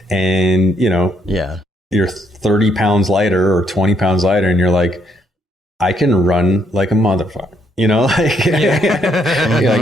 And, you're 30 pounds lighter or 20 pounds lighter, and you're like, I can run like a motherfucker. Like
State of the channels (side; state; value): both; normal; correlation 0.73